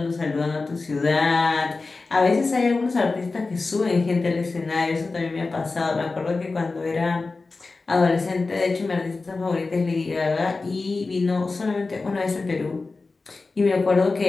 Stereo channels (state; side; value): quieter; right; 3.8 dB